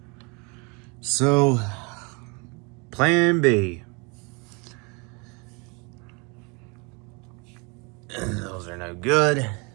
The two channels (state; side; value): quieter; left; 30.9 dB